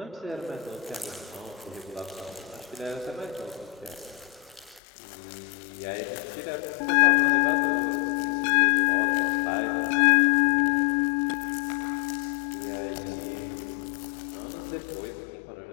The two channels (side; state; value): right; drops out; at 4.8 s